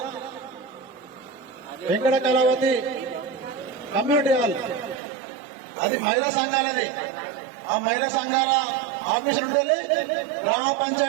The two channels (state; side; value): drops out; left; at 5.0 s